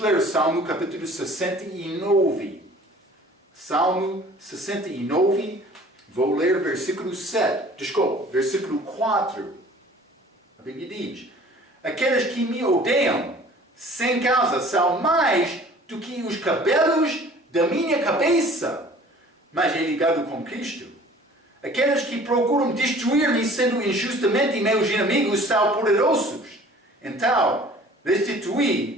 Salmo capítulo 69. Salmo 69, vou ler versículo 4. A Bíblia diz: aqueles que me odeiam sem causa são mais do que os cabelos da minha cabeça. Mas é ligado com Cristo. Aqueles que procuram destruir-me sendo injustamente meus inimigos são poderosos. Então,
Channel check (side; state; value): both; normal; correlation 0.49